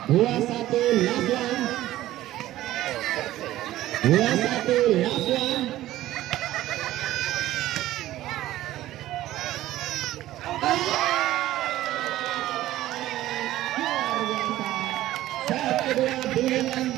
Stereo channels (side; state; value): left; quieter; 14.8 dB